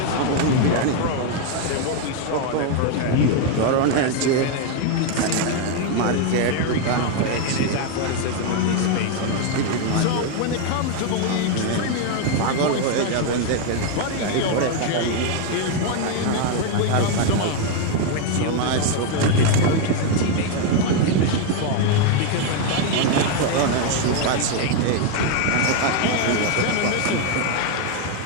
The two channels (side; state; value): both; different; correlation 0.01